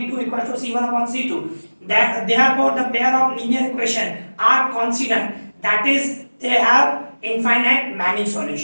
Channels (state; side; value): inverted; both; correlation -1.00